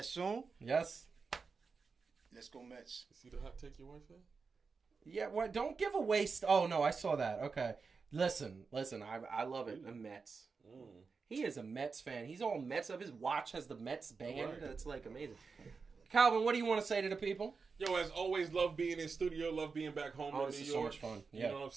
soon. Yes. Let's go Mets. See the hot take your wife had? Yeah, what? Don't give away... Oh, no, I saw that. Okay. Listen. I love it. The Mets. He is a Mets fan. He's all Mets up. His watch has the Mets band. Right. That's like amazing. Calvin, what do you want to say to the people? Yo, as always, love being in studio, love being back home in This New is York. so much fun. You Yeah. know what I'm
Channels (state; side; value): quieter; left; 4.9 dB